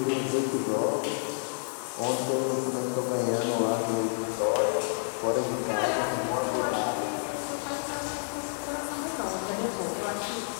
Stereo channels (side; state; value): right; silent; digital silence